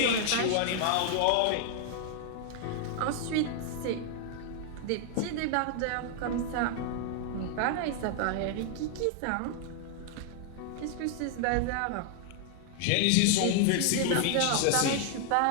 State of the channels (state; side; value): different; both; correlation 0.00